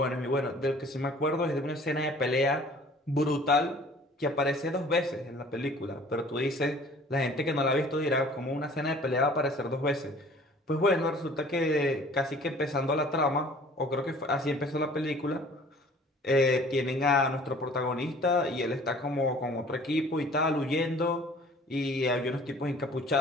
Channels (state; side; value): normal; both; correlation 0.50